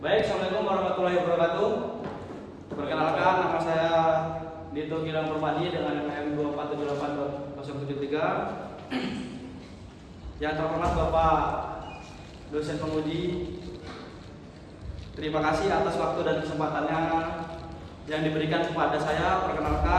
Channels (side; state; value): both; identical; correlation 1.00